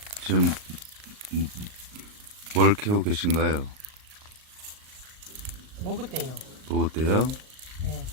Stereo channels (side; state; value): left; late; 38 ms